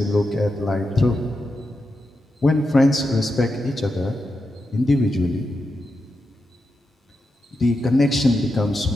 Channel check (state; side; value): normal; both; correlation 0.87